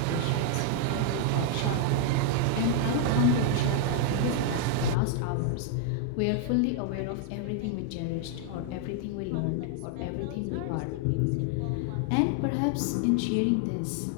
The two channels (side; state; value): both; different; correlation 0.00